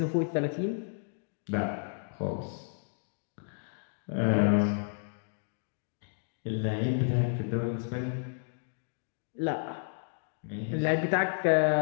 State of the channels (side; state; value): right; silent; digital silence